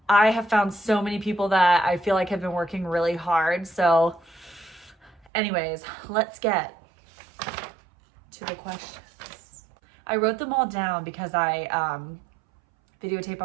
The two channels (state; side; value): drops out; left; at 5.3 s